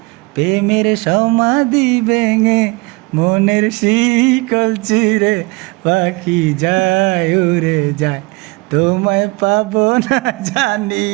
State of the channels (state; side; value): quieter; left; 24.8 dB